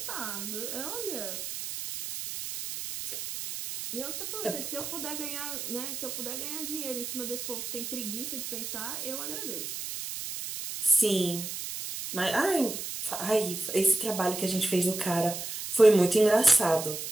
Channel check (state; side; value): noise; right; hiss, 6 dB below the sound